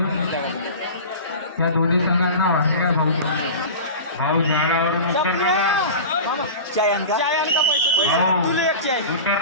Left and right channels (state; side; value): inverted; both; correlation -0.33